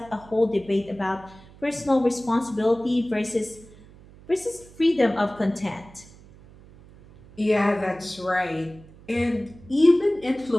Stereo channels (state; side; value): noise; right; hum, 22 dB below the sound